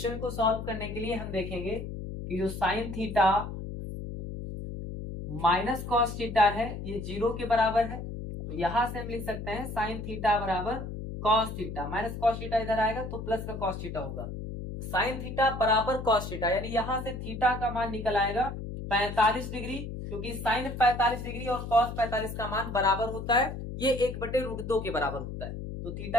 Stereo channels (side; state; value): left; noise; hum, 7 dB below the sound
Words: को सॉल्व करने के लिए हम देखेंगे कि जो sine theta minus cos theta है ये 0 के बराबर है। तो यहां से हम लिख सकते हैं साइन थीटा बराबर cos theta, minus cos theta इधर आएगा तो प्लस का कॉस थीटा होगा। साइन थीटा बराबर कॉस थीटा, यानी यहां से थीटा का मान निकल आएगा 45 डिग्री, क्योंकि साइन 45 डिग्री और कॉस 45 का मान बराबर होता है, ये 1/√2 के बराबर होता है। तो